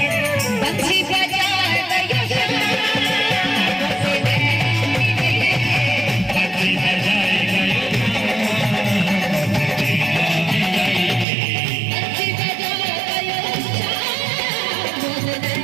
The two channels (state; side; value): drops out; left; at 11.2 s